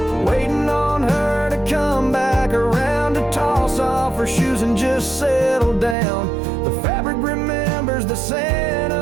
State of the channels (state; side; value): drops out; left; at 6.0 s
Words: waiting on her to come back around to toss off her shoes and just settle down. The fabric remembers the scent